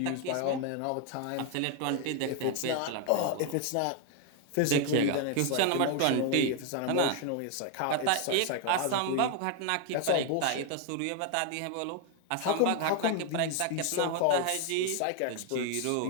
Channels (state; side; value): different; both; correlation 0.01